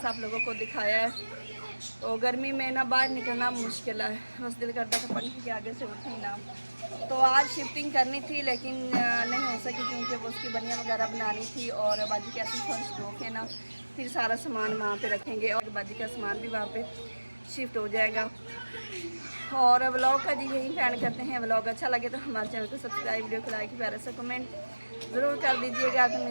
आप लोगों को दिखाया है। तो गर्मी में ना बाहर निकलना मुश्किल है, बस दिल करता था पंखे के आगे से उठे ना। तो आज शिफ्टिंग करनी थी लेकिन नहीं हो सकी, क्योंकि वो उसकी बनियाँ वगैरह बनानी थी। और बाजी कहती फर्श धो के ना फिर सारा सामान वहाँ पे रखेंगे, और बाजी का सामान भी वहाँ पे शिफ्ट हो जाएगा। और व्लॉग का जी यही प्लान करते हैं। व्लॉग अच्छा लगे तो हमारे चैनल को सब्सक्राइब, वीडियो को लाइक, प्यारा सा कमेंट ज़रूर कर दीजिएगा। तो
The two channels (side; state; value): both; inverted; correlation -1.00